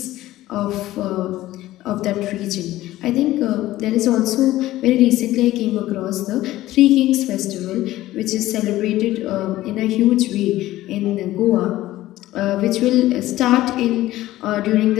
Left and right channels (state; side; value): quieter; right; 15.7 dB